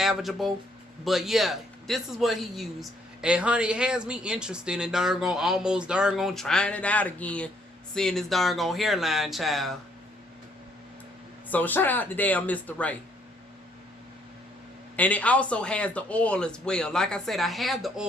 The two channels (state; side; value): normal; both; correlation 0.68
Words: But yeah, this is what he used. And honey, it has me interested in almost trying it out again. Seeing this hairline, child. So shout out to damn Mr. Ray. And it also has the oil as well. Like I said, I have the